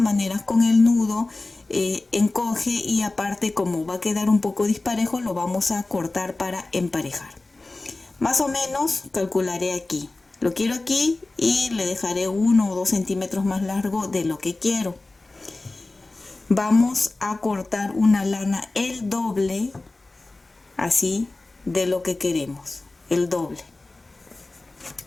maneras con el nudo encoge, y aparte como va a quedar un poco disparejo lo vamos a cortar para emparejar. Más o menos calcularé aquí. Lo quiero aquí y le dejaré 1 o 2 centímetros más largo de lo que quiero. Vamos a cortar una lana el doble, así, de lo que queremos, el doble.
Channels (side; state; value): right; quieter; 3.1 dB